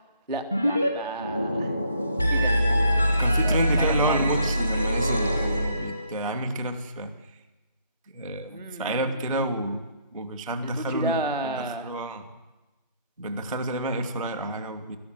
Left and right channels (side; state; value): both; inverted; correlation -0.67